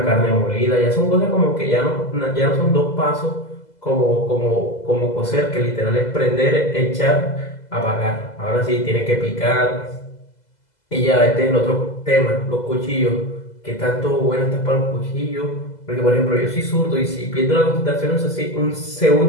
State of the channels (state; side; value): late; right; 2.0 ms